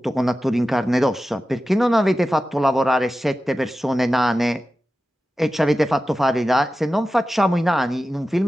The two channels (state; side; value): normal; both; correlation 0.93